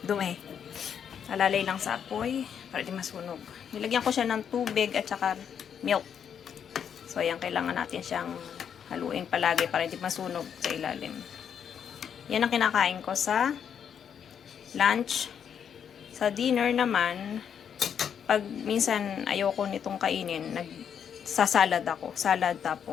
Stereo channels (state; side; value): quieter; right; 8.0 dB